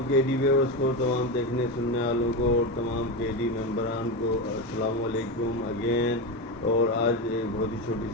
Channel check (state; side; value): normal; both; correlation 0.15